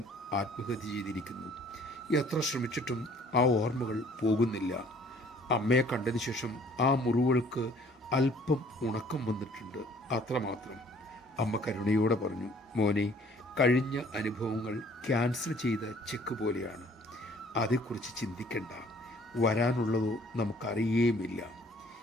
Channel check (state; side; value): normal; both; correlation 0.56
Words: ആത്മഹത്യ ചെയ്തിരിക്കുന്നു. എത്ര ശ്രമിച്ചിട്ടും ആ ഓർമ്മകൾ പോകുന്നില്ല. അമ്മയെ കണ്ടതിന് ശേഷം ആ മുറിവുകൾക്ക് അല്പം ഉണക്കം വന്നിട്ടുണ്ട്, അത്രമാത്രം. അമ്മ കരുണയോടെ പറഞ്ഞു, മോനെ, കഴിഞ്ഞ അനുഭവങ്ങൾ ക്യാൻസൽ ചെയ്ത ചെക്ക് പോലെയാണ്. അതേക്കുറിച്ച് ചിന്തിക്കണ്ട. വരാനുള്ളതോ നമുക്കറിയേമില്ല.